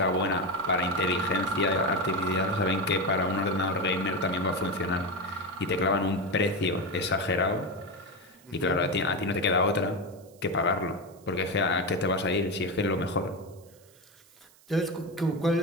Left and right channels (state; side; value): noise; right; hiss, 28 dB below the sound